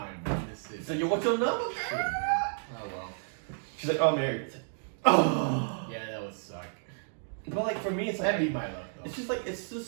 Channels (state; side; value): silent; left; digital silence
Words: Man. This is So, "Yo, what's your number?" shit, man. Oh well. She's like, "Oh, I'm married." It's like, oh. Yeah, that would suck. But like for me, it's like That'd be my luck, though. it's